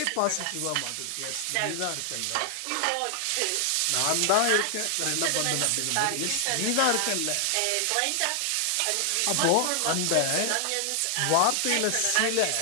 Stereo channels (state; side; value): different; both; correlation 0.00